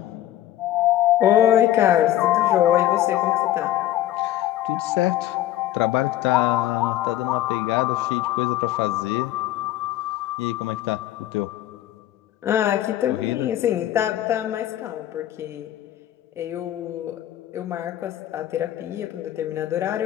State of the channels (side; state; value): right; quieter; 13.3 dB